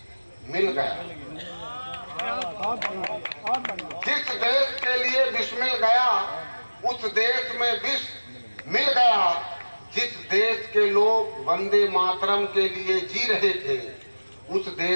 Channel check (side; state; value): both; inverted; correlation -1.00